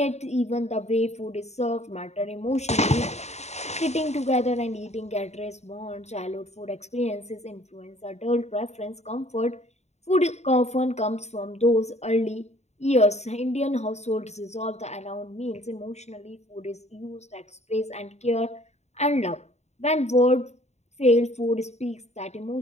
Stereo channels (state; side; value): late; right; 0.32 ms